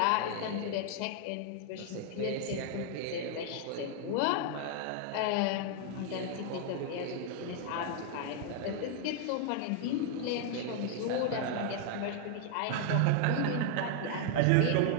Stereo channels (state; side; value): different; both; correlation 0.00